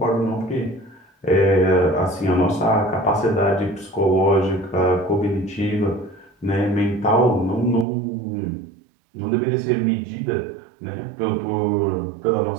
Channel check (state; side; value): drops out; left; at 7.9 s